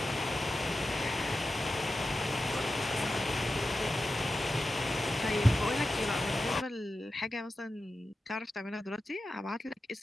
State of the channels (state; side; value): normal; both; correlation 0.92